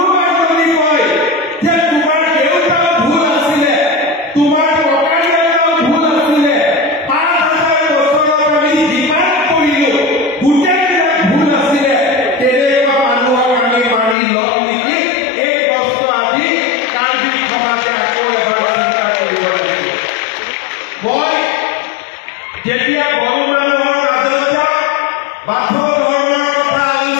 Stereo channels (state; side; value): drops out; right; at 14.2 s